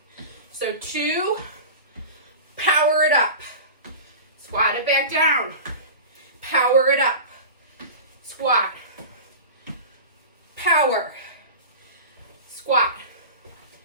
So 2, power it up. Squat it back down. Power it up. Squat. Power. Squat.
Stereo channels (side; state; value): both; inverted; correlation -0.33